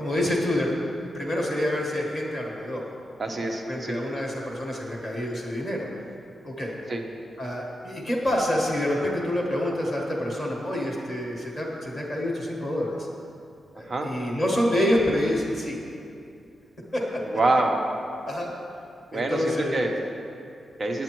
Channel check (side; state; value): both; normal; correlation 0.87